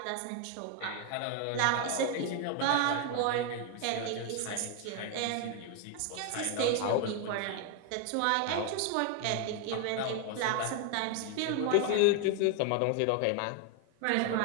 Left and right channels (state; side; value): different; both; correlation 0.01